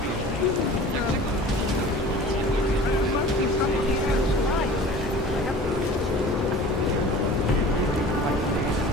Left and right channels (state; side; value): normal; both; correlation 0.42